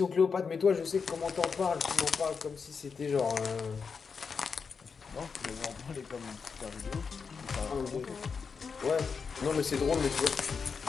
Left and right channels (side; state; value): right; quieter; 5.6 dB